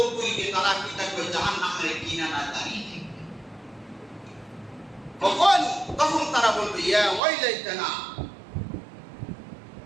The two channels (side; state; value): left; drops out; at 7.2 s